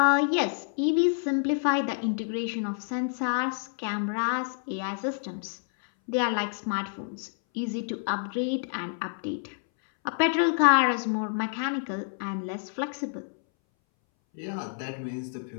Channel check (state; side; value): silent; right; 59 dB below the other